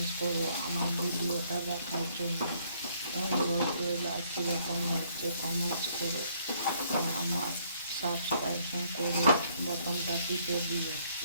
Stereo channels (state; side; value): inverted; both; correlation -0.66